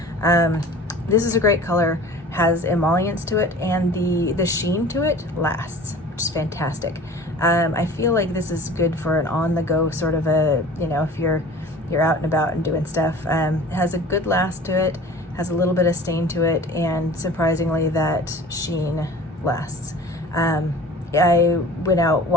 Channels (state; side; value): normal; both; correlation 0.42